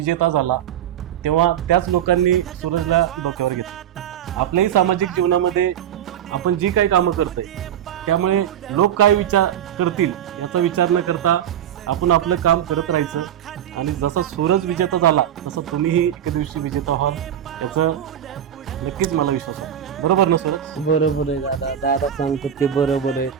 झाला तेव्हा त्याच लोकांनी सूरजला डोक्यावर घेतलं. आपल्याही सामाजिक जीवनामध्ये आपण जी काही कामं करतोय त्यामुळे लोक काय विचार करतील याचा विचार न करता आपण आपलं काम करत राहायचं. आणि जसा सूरज विजेता झाला तसं तुम्हीही एके दिवशी विजेता व्हाल याचं नक्कीच मला विश्वास आहे. बरोबर ना सूरज? बरोबर आहे दादा. दादा सांगतो ते बरोबर आहे.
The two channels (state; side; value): quieter; left; 10.0 dB